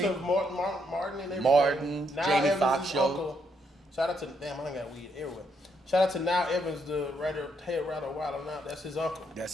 Yusuf Martin and everything. Martin, Now Jamie Evans' Foxx show. uncle. Shout out to damn, I got weed everywhere. Shout out to Now Evans, the head writer Wild Now. That's his uncle.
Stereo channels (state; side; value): normal; both; correlation 0.75